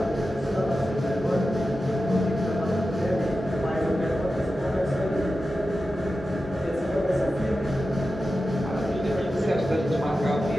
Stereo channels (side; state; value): both; normal; correlation 0.92